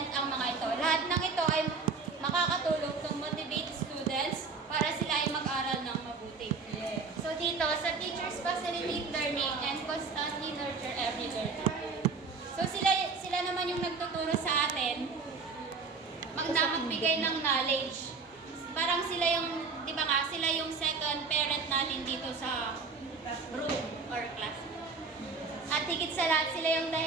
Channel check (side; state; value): left; quieter; 4.6 dB